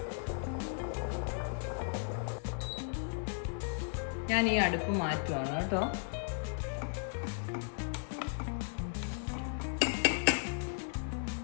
ഞാൻ ഈ അടുപ്പ് മാറ്റുവാണ് കേട്ടോ.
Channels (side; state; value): right; silent; 54 dB below the other